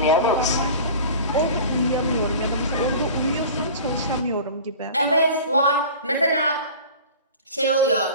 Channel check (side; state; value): both; inverted; correlation -0.38